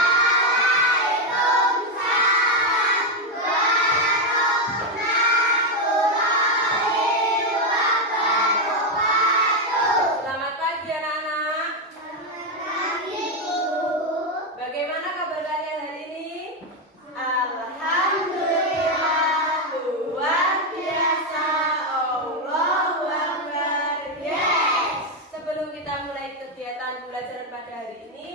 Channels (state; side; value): normal; both; correlation 0.06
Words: Selamat pagi anak-anak. Bagaimana kabar kalian hari ini? Alhamdulillah, luar biasa. Allahu Akbar. Yes. Sebelum kita mulai kegiatan pembelajaran pada hari